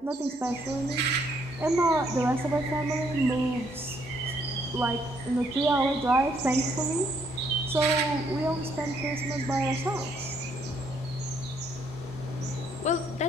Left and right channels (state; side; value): normal; both; correlation 0.70